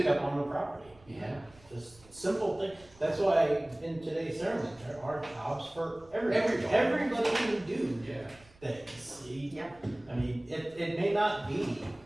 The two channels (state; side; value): noise; right; rumble, 26 dB below the sound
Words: pickup on the property. Yeah. Just simple thing, that's why in today's sermon, there are jobs for everybody. Everybody. Everybody can do Yeah, things. Yep. I mean, it may not be